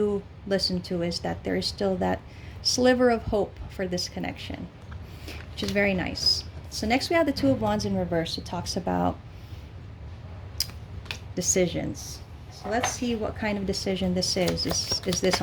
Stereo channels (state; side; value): identical; both; correlation 1.00